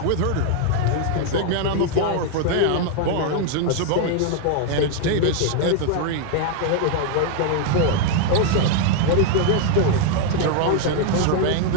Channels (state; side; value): different; both; correlation 0.00